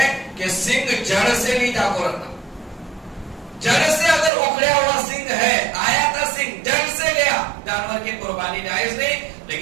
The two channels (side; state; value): left; drops out; at 4.3 s